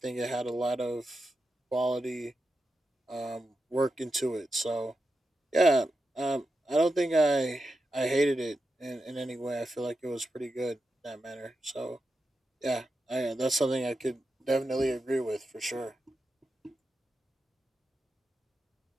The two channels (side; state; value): both; normal; correlation 0.89